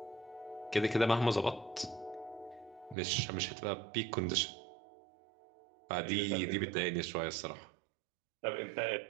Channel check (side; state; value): left; drops out; at 3.0 s